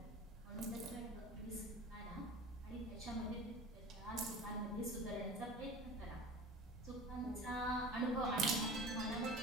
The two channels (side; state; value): both; normal; correlation 0.37